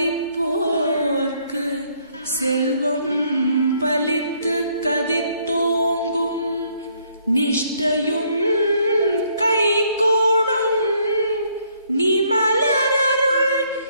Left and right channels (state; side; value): inverted; both; correlation -0.67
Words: செல்வம் பலித்து கதித்தோங்கும் நிஷ்டையும் கைகூடும் நீ மலரருள்